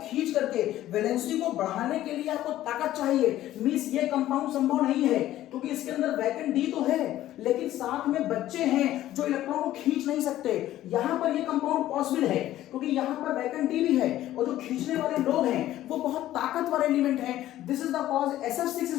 खींच करके वैलेंसी को बढ़ाने के लिए आपको ताकत चाहिए, मींस ये कंपाउंड संभव नहीं है, क्योंकि इसके अंदर वैकेंट डी तो है लेकिन साथ में बच्चे हैं जो इलेक्ट्रॉन को खींच नहीं सकते। यहाँ पर ये कंपाउंड पॉसिबल है क्योंकि यहाँ पर वैकेंट डी भी है और जो खींचने वाले लोग हैं वो बहुत ताकतवर एलिमेंट हैं। This is the cause SF6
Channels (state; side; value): quieter; right; 13.8 dB